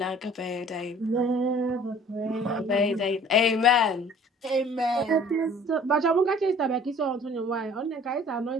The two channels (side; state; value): both; normal; correlation 0.51